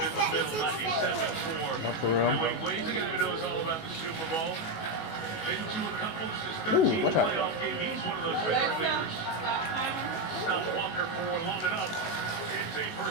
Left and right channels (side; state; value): right; late; 19 ms